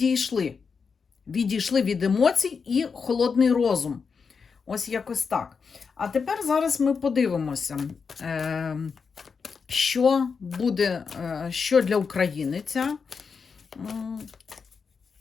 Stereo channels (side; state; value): right; quieter; 5.5 dB